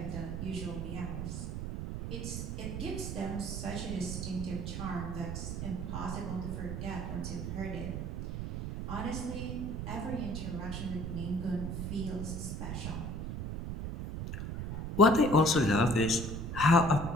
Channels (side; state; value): right; noise; rumble, 4 dB below the sound